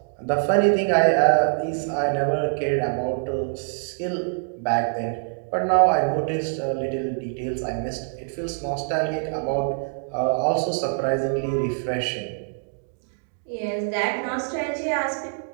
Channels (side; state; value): left; silent; digital silence